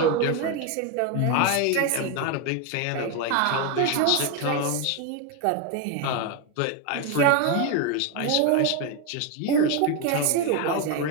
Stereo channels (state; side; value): different; both; correlation 0.02